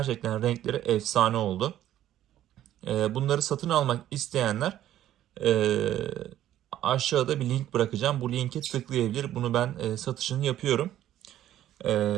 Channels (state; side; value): quieter; left; 12.4 dB